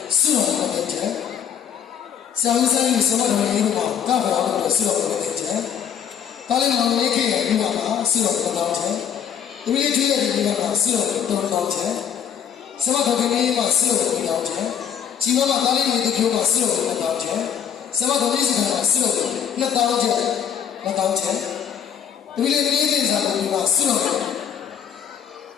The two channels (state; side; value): quieter; right; 8.5 dB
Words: စွန့်တော်တဲ့ချက်ဆရာကြီးဆိုင်ဆရာတော်ကြီးတို့ကောက်ပါလို့စွန့်တော်တဲ့ချက်ဒါလည်းမောင်လေးခေရဲ့ဒီမှာစွန့်တော်တောင်းချက်ဒီလေးကြီးရဲ့ဒီမှာစွန့်တော်တောင်းချက်ဆရာတော်ကြီးမှာစွန့်တော်တောင်းချက်ជីဝမှာဒါလေးတွေပြောမှာစွန့်တော်တောင်းချက်ဆရာတော်ကြီးကစွန့်တော်နှစ်တောင်းချက်နှစ်တောင်းချက်ဒီလေးကြီးစာကိုဒီမှာစွန့်တော်